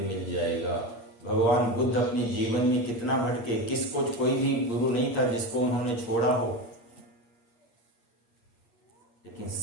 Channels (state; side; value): late; right; 8.5 ms